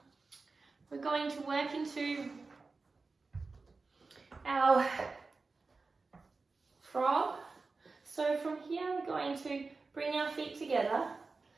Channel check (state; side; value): quieter; left; 4.0 dB